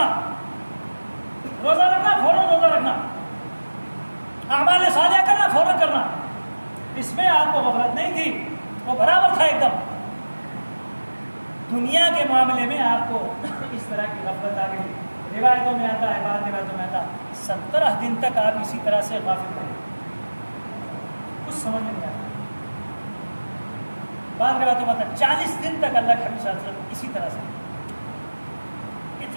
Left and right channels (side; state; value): both; inverted; correlation -1.00